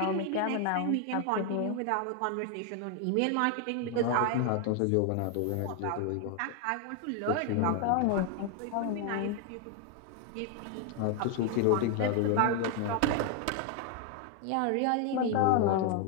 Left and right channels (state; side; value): different; both; correlation 0.01